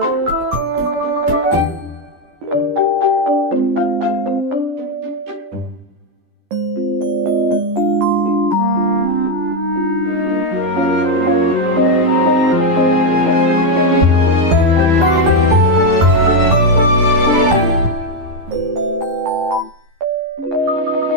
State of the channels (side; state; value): left; late; 11 ms